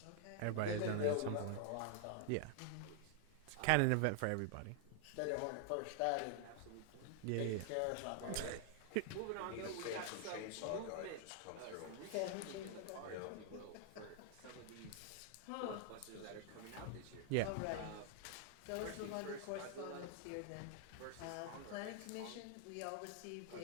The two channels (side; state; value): both; different; correlation 0.00